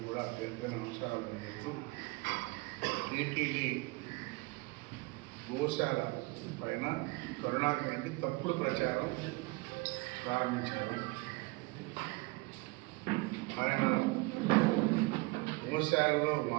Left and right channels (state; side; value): quieter; left; 24.8 dB